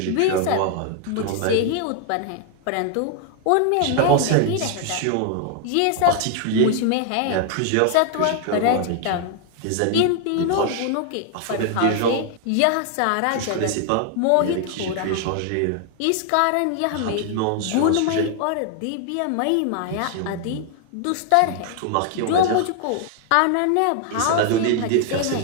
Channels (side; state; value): both; different; correlation 0.00